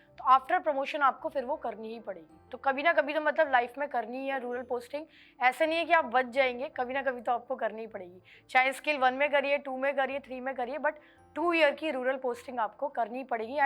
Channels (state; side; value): identical; both; correlation 1.00